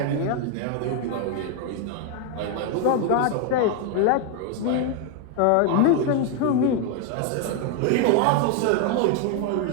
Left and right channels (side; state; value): both; different; correlation 0.01